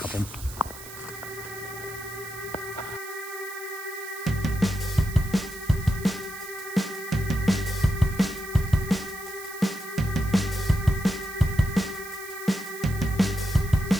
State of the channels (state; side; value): noise; right; hiss, 14 dB below the sound